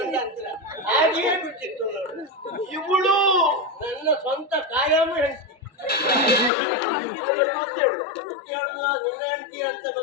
ಅಂತರ ಹಾಗೆಯೇ ಬಿಟ್ಟಿತ್ತು ನೋಡು. ಇವಳು ನನ್ನ ಸ್ವಂತ ಕಾಯಂ ಹೆಂಡತಿ. ಹೇಳುದು ನಿನ್ನ ಹೆಂಡತಿ ಅಂತ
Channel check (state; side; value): drops out; right; at 6.5 s